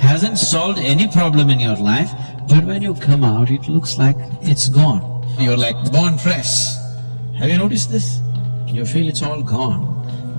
solved any problem in your life, but when you come out, it looks like it's gone. You're like born fresh. Have you noticed this? You feel it's all gone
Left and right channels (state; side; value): inverted; both; correlation -1.00